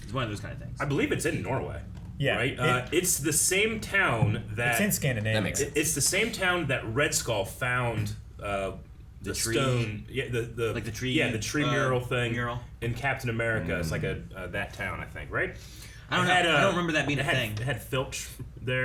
It's one of those kind of things. I believe it's in Norway. Yeah. Right. It's the same town that. It's in Scandinavia. That makes sense. It's the same town that Red Skull found the tree- stone. Yeah. The like the tree, Yeah, the tree mural thing. mural. In Captain America. It's like that town, I think. Right. I don't know. I don't remember that being a thing. It had Filch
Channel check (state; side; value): identical; both; correlation 1.00